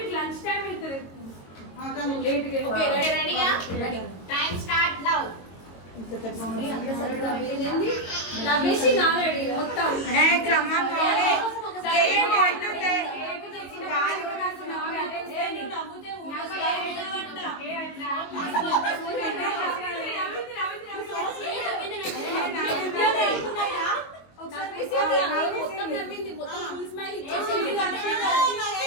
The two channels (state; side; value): late; right; 22 ms